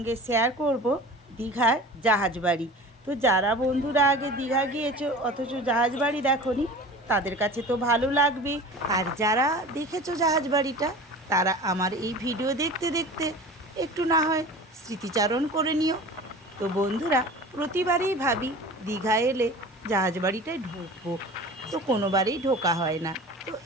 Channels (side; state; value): both; normal; correlation 0.38